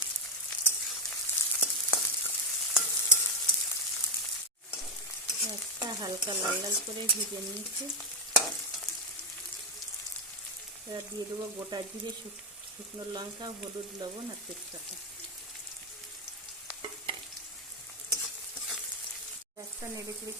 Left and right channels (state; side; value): normal; both; correlation 0.05